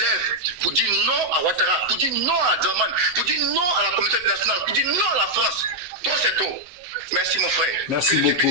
pour dire non à Ouattara, pour dire non à Dramane, pour dire non à la communauté nationale, pour dire non à la France. Trop c'est trop. Merci mon frère. Merci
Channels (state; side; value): late; left; 8.0 ms